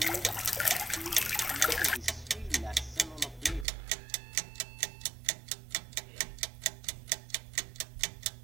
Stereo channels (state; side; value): drops out; left; at 3.7 s